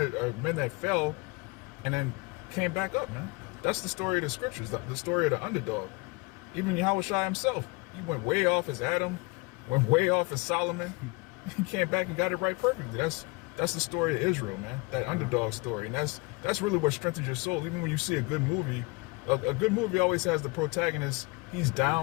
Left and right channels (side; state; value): right; quieter; 26.8 dB